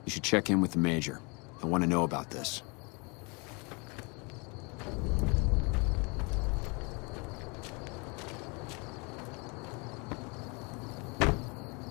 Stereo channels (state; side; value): quieter; right; 30.5 dB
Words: You should check in with the Major. I want to know about this.